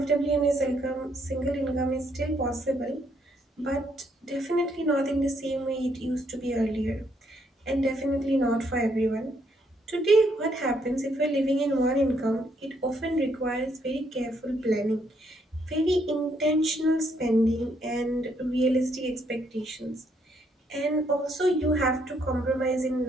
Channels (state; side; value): normal; both; correlation 0.72